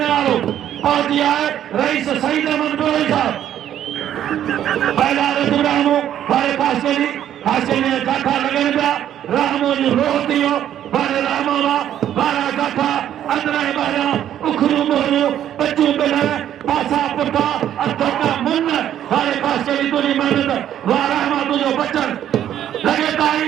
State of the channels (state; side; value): quieter; left; 10.9 dB